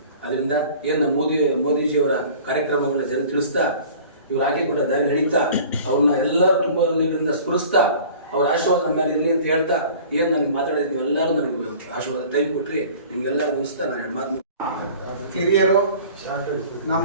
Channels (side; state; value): both; inverted; correlation -0.45